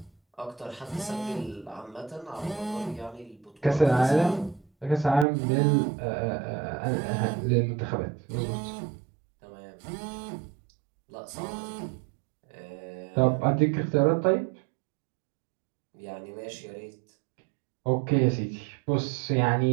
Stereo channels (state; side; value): drops out; left; at 5.2 s